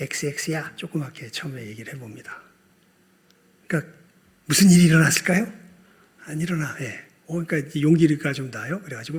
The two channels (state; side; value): identical; both; correlation 1.00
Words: 조그맣게 처음에 얘기를 해봅니다. 그러니까 무슨 일이 일어났을까요? 안 일어나. 그러니까 용기가 좀 나요.